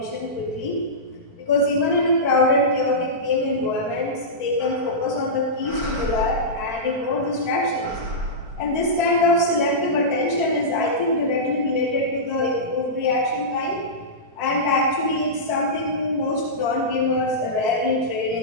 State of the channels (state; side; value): late; left; 4.5 ms